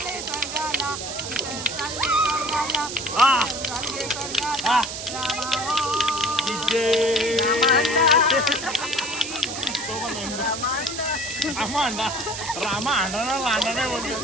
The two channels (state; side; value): noise; right; hiss, 7 dB below the sound